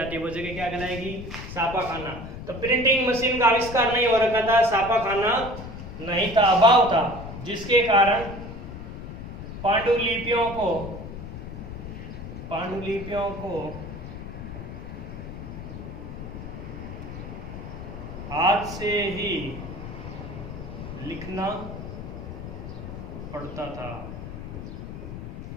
है, वो जगह क्या कहलाएगी? छापाखाना। तो प्रिंटिंग मशीन का आविष्कार नहीं हो रखा था, छापाखाना नहीं था, अभाव था, जिसके कारण पांडुलिपियों को हाथ से ही लिखना पड़ता था,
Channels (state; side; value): noise; left; rumble, 10 dB below the sound